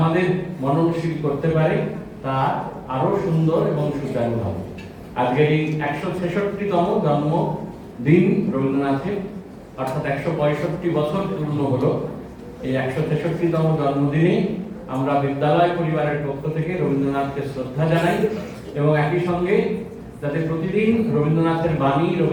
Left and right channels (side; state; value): both; identical; correlation 1.00